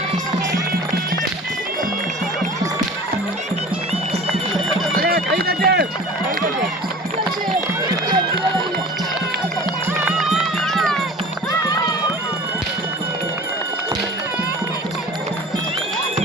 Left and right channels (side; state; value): both; normal; correlation 0.41